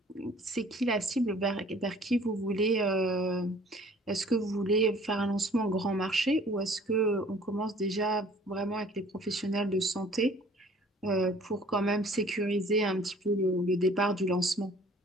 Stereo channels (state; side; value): normal; both; correlation 0.53